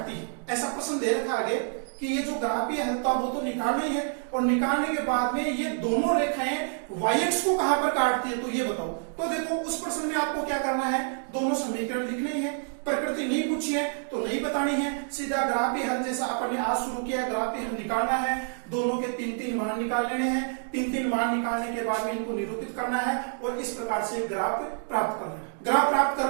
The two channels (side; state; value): left; silent; 60 dB below the other